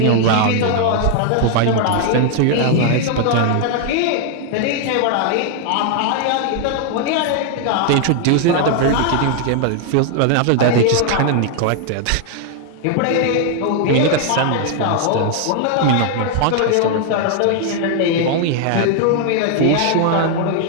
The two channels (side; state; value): both; different; correlation 0.00